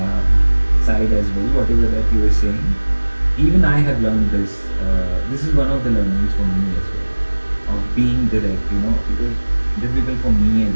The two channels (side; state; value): both; inverted; correlation -1.00